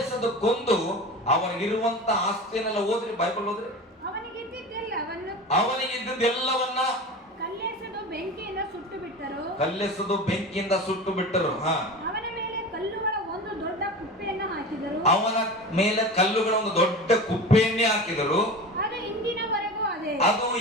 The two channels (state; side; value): normal; both; correlation 0.31